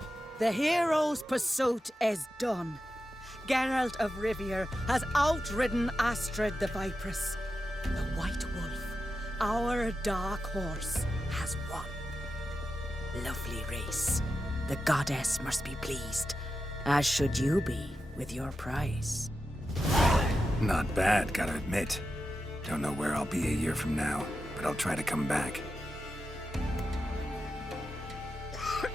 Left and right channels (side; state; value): both; normal; correlation 0.90